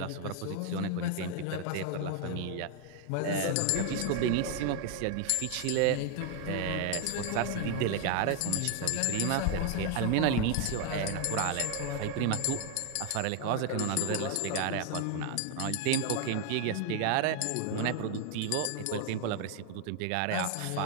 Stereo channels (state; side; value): different; both; correlation 0.00